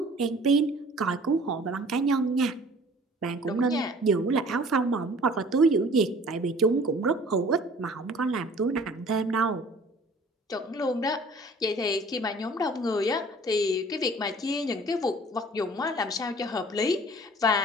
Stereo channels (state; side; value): normal; both; correlation 0.50